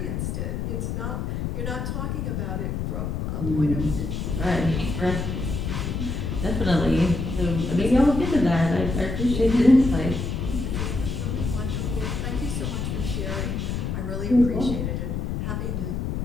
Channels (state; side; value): noise; left; rumble, 2 dB below the sound